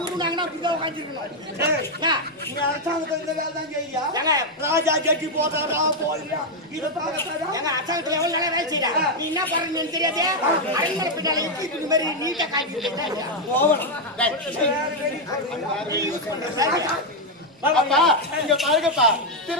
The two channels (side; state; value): both; normal; correlation 0.01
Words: உருவாங்கன்னா அப்படியே உட்கார்ந்திருக்கணும். நீ அரசாங்கத்துல இந்த வேலை தான் செய்யா? ராஜா ஜட்டி போறாரா போலியா? இத பாக்கறதா? எங்க அரசாங்கத்துல எவ்வளவு நல்லா வேலை செய்றா? நீ என்ன பண்றன்னு தெரியாதே? அரண்மனை பின்னால எப்படி இந்த மாதிரி நீட்டா காட்டிட்டு போவணும். அப்பா இங்க பாருங்கப்பா,